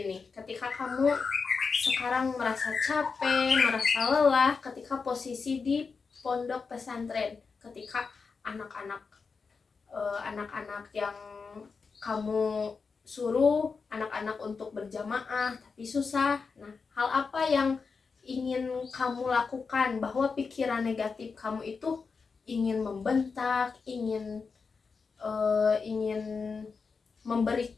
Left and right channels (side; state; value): right; quieter; 5.0 dB